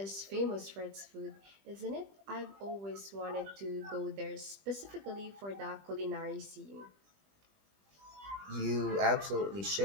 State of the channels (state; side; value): late; left; 20 ms